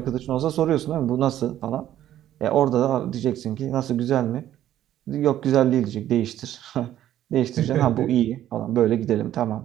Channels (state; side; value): quieter; left; 12.2 dB